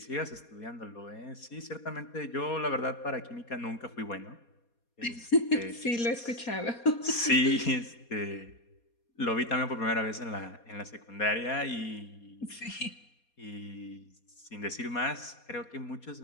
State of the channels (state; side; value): late; right; 4.2 ms